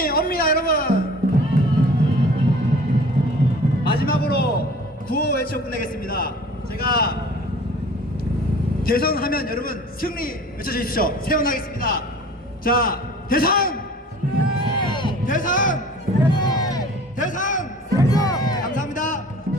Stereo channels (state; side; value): normal; both; correlation 0.46